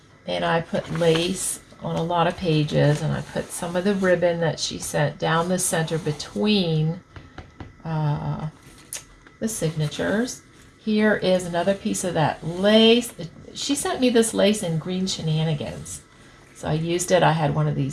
And I put lace on a lot of pages, and I put some of the ribbon that she sent down the center between the signatures. Here is another piece of that lace. She sent me this lace in Green Shenanigans. So I used it. I had one of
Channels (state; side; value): identical; both; correlation 1.00